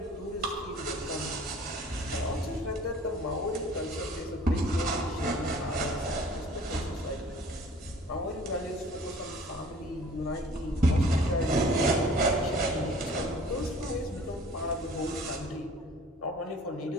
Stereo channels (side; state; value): both; normal; correlation 0.49